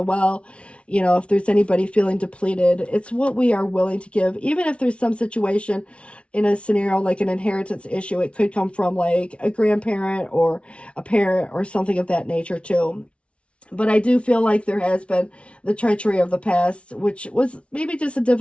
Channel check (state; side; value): late; right; 0.061 ms